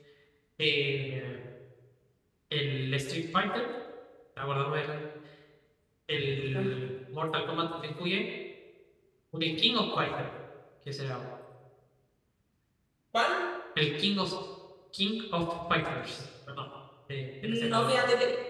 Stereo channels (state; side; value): identical; both; correlation 1.00